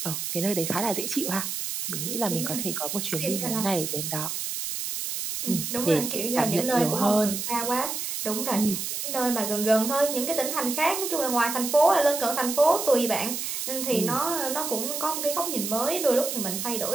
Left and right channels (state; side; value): noise; right; hiss, 4 dB below the sound